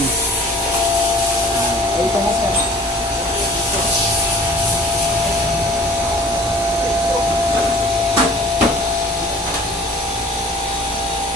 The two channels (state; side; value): normal; both; correlation 0.48